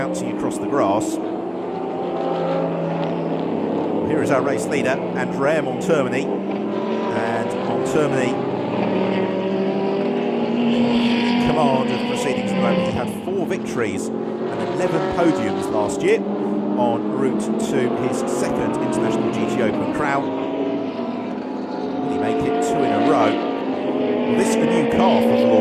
across the grass. Here is our race leader, Andrea Montermini. And Montermini in command of proceedings at the moment. He had 4 victories and 11 podiums last year en route to his second International GT Open crown. Will he make it 2 in a row? Well, this is a new car for the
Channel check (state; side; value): identical; both; correlation 1.00